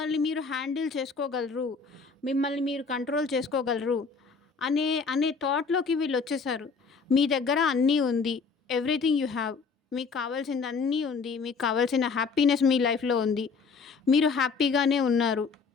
మీరు హ్యాండిల్ చేసుకోగలరు. మిమ్మల్ని మీరు కంట్రోల్ చేసుకోగలరు. అనే థాట్‌లోకి వీళ్ళొచ్చేసారు. మీ దగ్గర అన్నీ ఉంది. Everything you have. మీకు కావాల్సింది అన్నీ ఉంది. మీకు కావాల్సిన హ్యాపీనెస్ మీ లైఫ్‌లో ఉంది. మీరు హ్యాపీగానే ఉన్నారు.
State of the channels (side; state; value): right; quieter; 5.0 dB